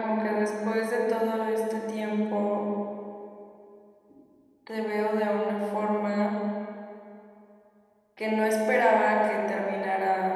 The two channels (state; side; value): identical; both; correlation 1.00